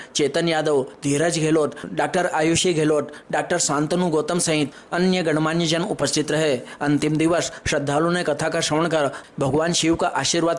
चेतन यादव, धीरज गहलोत, डॉक्टर आयुषी गहलोत, डॉक्टर शांतनु गौतम सहित अन्य गणमान्य जन उपस्थित रहे। अंतिम दिवस श्रद्धालुओं ने कथा का श्रवण कर भगवान शिव का आशीर्वाद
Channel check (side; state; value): both; identical; correlation 1.00